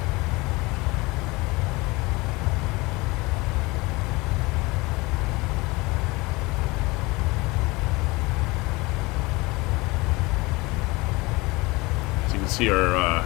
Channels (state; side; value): quieter; right; 23.4 dB